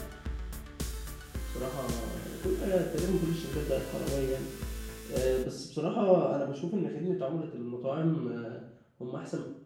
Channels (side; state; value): both; identical; correlation 1.00